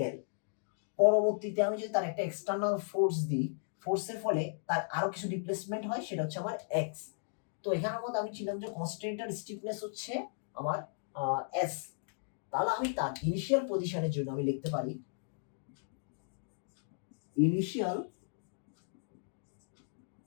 পরবর্তীতে আমি যদি তার একটা এক্সটার্নাল ফোর্স দিই, ফোর্সের ফলে তার আরো কিছু ডিসপ্লেসমেন্ট হয়, সেটা হচ্ছে আমার এক্স। তো এখানের মধ্যে আমি ছিলাম যে কনস্ট্যান্টের স্টিফনেস হচ্ছে আমার এস। তাহলে আমি তার ইনিশিয়াল পজিশনের জন্য আমি লিখতে পারি ইনিশিয়াল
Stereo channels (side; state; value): right; silent; digital silence